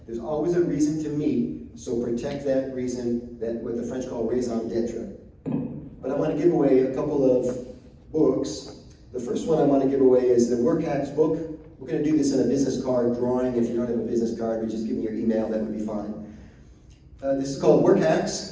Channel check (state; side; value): identical; both; correlation 1.00